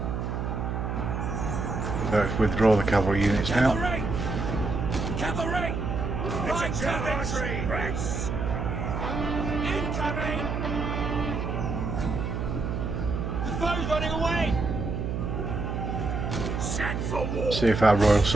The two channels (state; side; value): noise; right; hum, 2 dB below the sound